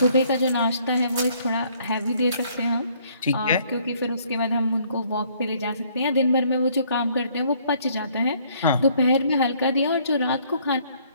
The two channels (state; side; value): inverted; both; correlation -0.63